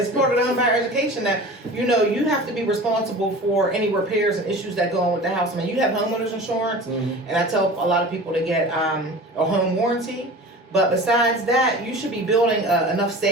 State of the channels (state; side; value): normal; both; correlation 0.38